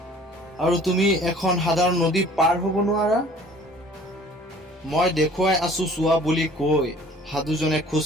আৰু তুমি এখন সাধাৰণ নদী পাৰ হ'ব নোৱাৰা? মই দেখুৱাই আছো চোৱা বুলি কৈ সাধুজনে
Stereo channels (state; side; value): normal; both; correlation 0.51